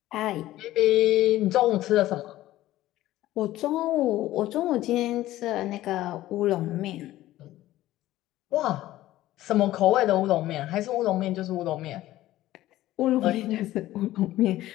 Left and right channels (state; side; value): quieter; right; 15.2 dB